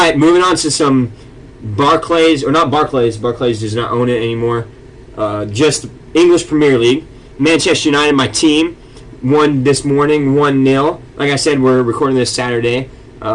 moving on to some Barclays, or not Barclays. Barclays does not own it anymore. Just English Premier League. Manchester United, my team, won this morning 1-0. Like I said, we're recording this Saturday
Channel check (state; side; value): identical; both; correlation 1.00